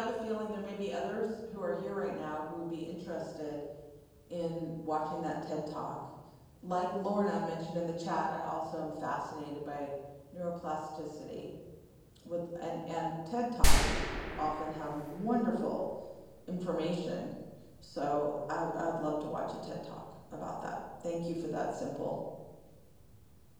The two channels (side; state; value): both; identical; correlation 1.00